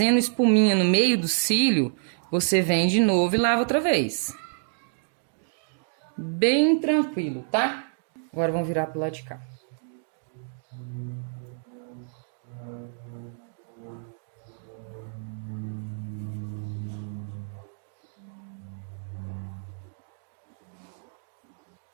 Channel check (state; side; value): silent; left; digital silence